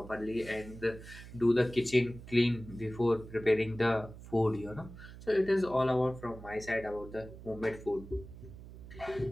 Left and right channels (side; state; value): right; noise; hum, 15 dB below the sound